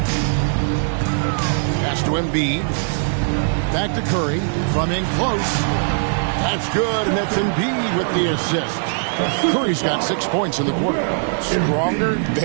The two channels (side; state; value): left; silent; digital silence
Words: Pass to Embiid. Back to Curry. From in close. That's good, and that's Embiid with the assist. Curry's got 6 points in the quarter. Stronger